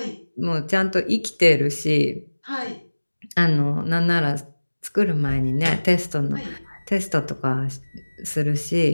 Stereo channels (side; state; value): both; inverted; correlation -1.00